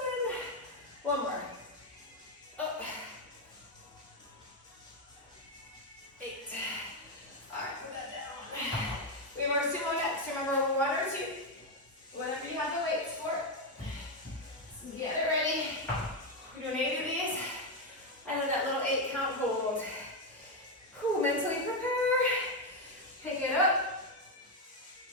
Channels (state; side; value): normal; both; correlation 0.06